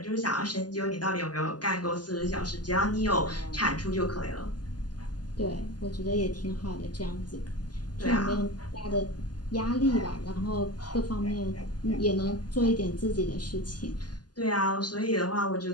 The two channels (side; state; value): right; late; 0.70 ms